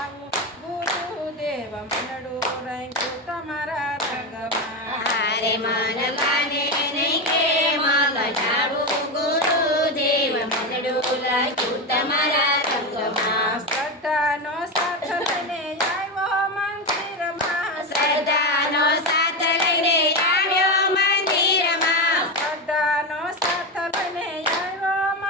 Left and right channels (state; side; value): normal; both; correlation 0.14